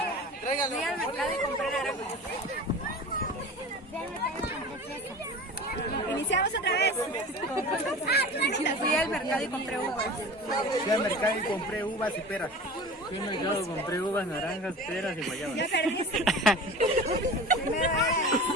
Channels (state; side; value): normal; both; correlation 0.36